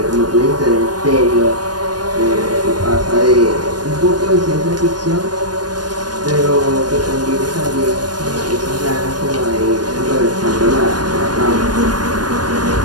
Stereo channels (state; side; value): late; left; 0.69 ms